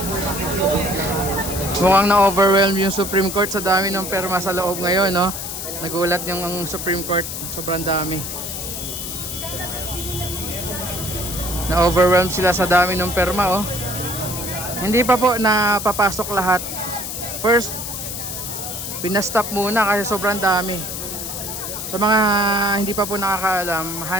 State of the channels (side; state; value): left; noise; hiss, 6 dB below the sound